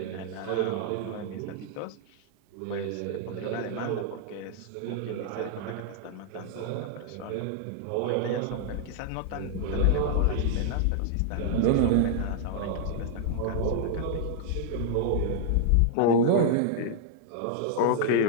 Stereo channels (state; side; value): different; both; correlation -0.01